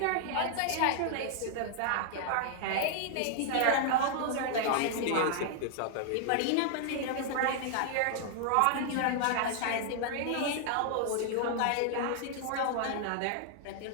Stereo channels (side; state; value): both; different; correlation 0.00